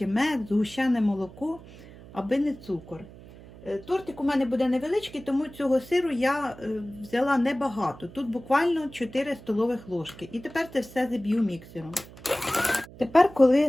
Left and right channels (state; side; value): noise; right; hum, 19 dB below the sound